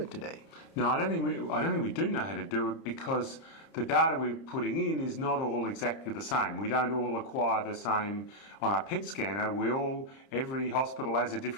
today. No, I don't think we do know how to do it, because the data we're putting in is not all exactly the same. We don't all acquire the same on our PET scanner. Every hospital has a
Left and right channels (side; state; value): right; late; 30 ms